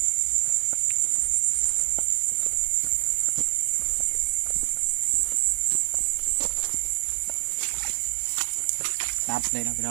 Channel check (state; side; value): silent; left; digital silence